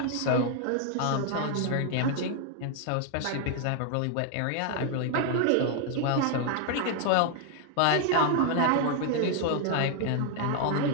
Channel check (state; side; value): different; both; correlation 0.00